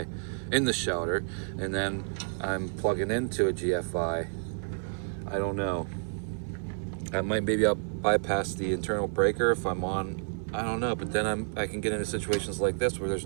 in the shelter, and then I'm plugging into a GFI. I don't know. Maybe I'll bypass the internal breaker if I'm on. I don't know, but then I can get into situations like this where there's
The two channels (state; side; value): silent; left; 58 dB below the other